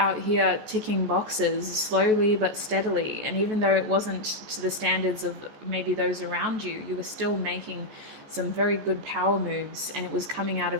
here ticking boxes slowly but steadily, and even though it wasn't to the standards of maybe those around you, you were still making some very good power moves, and it was coming out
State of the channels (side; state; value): left; late; 14 ms